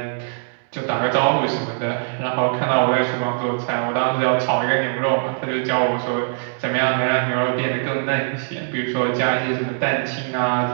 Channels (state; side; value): silent; left; 64 dB below the other